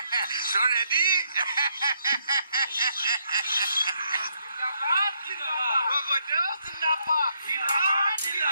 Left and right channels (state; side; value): inverted; both; correlation -0.74